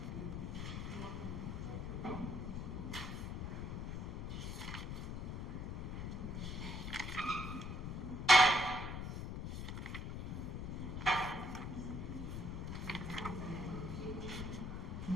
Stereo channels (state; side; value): noise; left; rumble, 3 dB below the sound